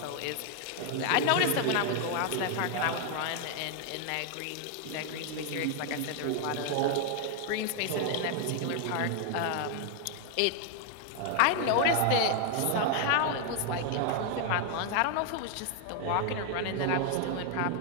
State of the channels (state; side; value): different; both; correlation 0.00